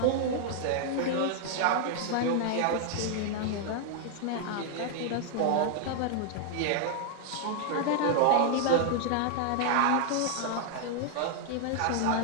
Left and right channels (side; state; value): both; different; correlation 0.00